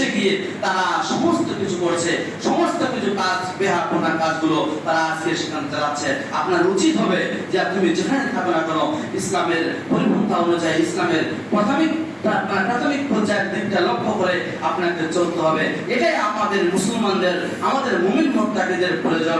গিয়ে তারা সমস্ত কিছু করছে, সমস্ত কিছু কাজ বেহাপনা কাজগুলো তারা আজকে সেখানে চালাচ্ছে। আপনার উচিত হবে যে তুমি যেখানে থাকো না কেন, ইসলামের পরিপন্থা অনুযায়ী, ইসলামের প্রাথমিক পর্যায়ের দিকটা লক্ষ্য করে আপনাকে চলতে হবে। এটাই আমাদের মুসলমানদের, আমাদের মুমিন মুত্তাকিদের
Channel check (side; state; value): both; identical; correlation 1.00